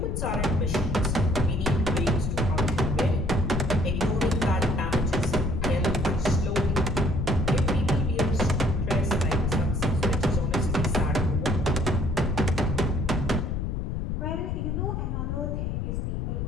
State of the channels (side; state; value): left; noise; rumble, 1 dB below the sound